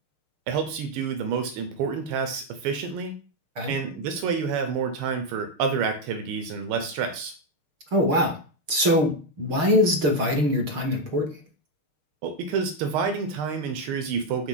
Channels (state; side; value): late; left; 6.5 ms